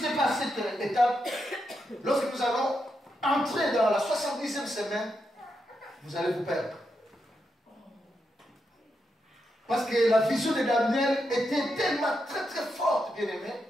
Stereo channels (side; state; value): both; normal; correlation 0.84